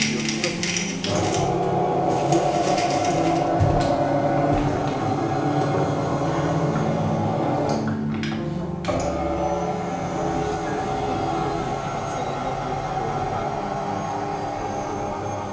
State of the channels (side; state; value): both; identical; correlation 1.00